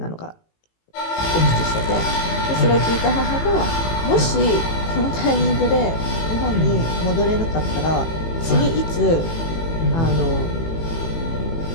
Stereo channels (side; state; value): right; late; 18 ms